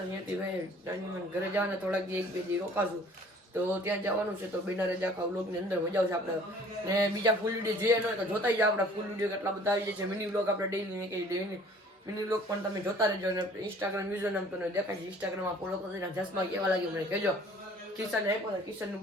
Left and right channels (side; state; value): both; normal; correlation 0.52